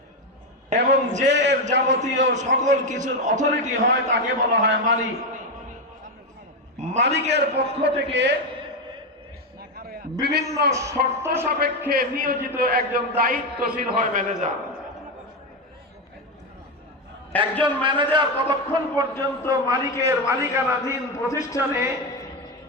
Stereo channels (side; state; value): both; normal; correlation 0.11